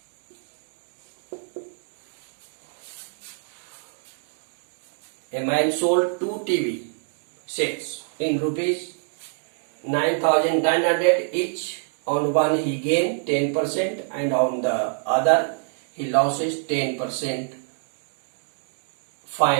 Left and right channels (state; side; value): silent; left; 61 dB below the other